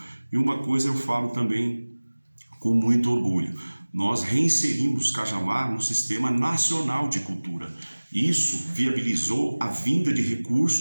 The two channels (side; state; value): both; inverted; correlation -1.00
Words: E uma coisa eu falo também com muito orgulho: nós reinserimos Cajamar no Sistema Nacional de Cultura. Isso viabilizou a vinda de